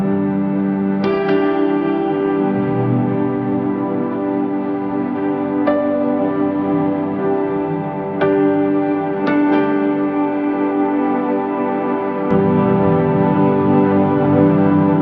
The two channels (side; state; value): both; identical; correlation 1.00